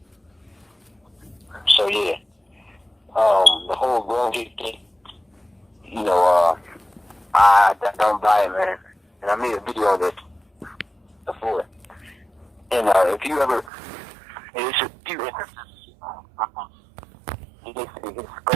So, yeah. The whole glovegate thing, you know, I don't buy it, man. And I made a video of it before. And if you ever, it's a few instances. His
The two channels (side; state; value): left; drops out; at 13.7 s